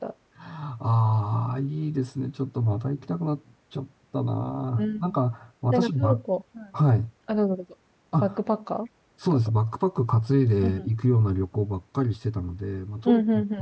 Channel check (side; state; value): both; identical; correlation 1.00